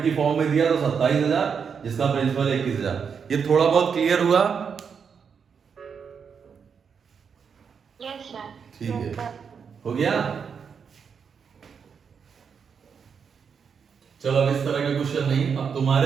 की फॉर्म में दिया तो 27,000, जिसका प्रिंसिपल 21,000। ये थोड़ा बहुत क्लियर हुआ? Yes sir. ठीक है, हो गया। चलो अब इस तरह के क्वेश्चन नहीं, अब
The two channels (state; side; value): quieter; left; 6.5 dB